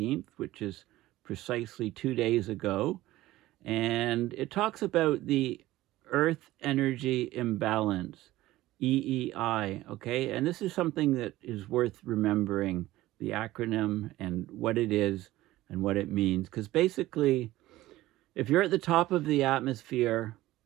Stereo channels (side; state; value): left; quieter; 16.5 dB